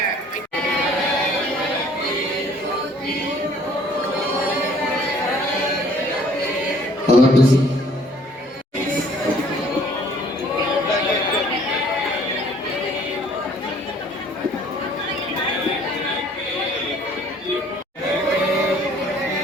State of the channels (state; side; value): normal; both; correlation 0.57